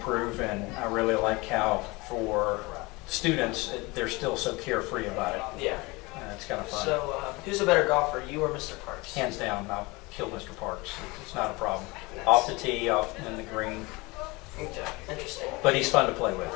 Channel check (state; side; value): quieter; right; 24.2 dB